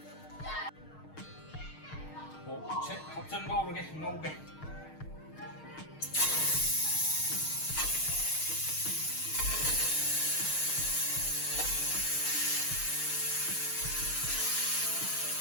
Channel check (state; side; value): late; right; 6.5 ms